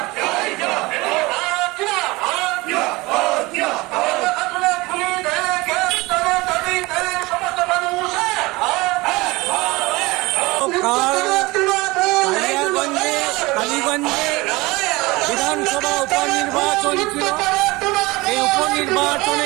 কালীগঞ্জে বিধানসভা উপনির্বাচন ছিল। এই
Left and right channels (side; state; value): left; quieter; 22.2 dB